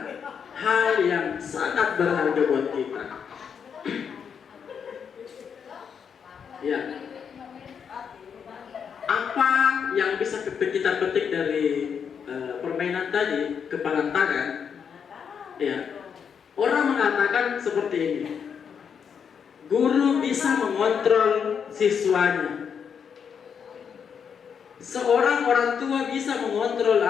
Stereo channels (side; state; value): right; quieter; 7.1 dB